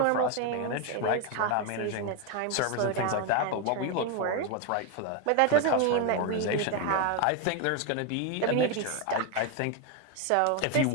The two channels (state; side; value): different; both; correlation 0.01